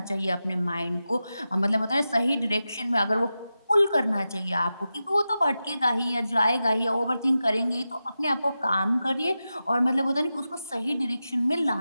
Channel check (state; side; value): inverted; both; correlation -0.92